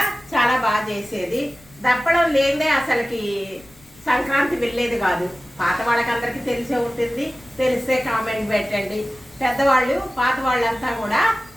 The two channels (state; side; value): noise; left; rumble, 26 dB below the sound